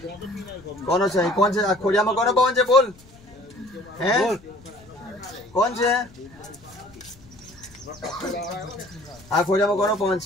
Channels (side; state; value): left; noise; rumble, 24 dB below the sound